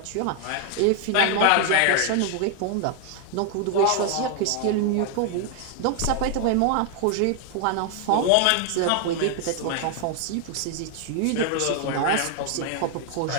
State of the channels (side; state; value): both; different; correlation 0.00